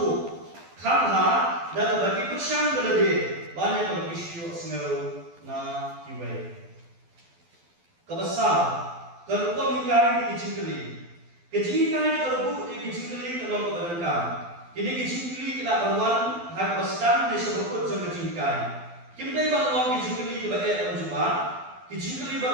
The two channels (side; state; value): left; late; 12 ms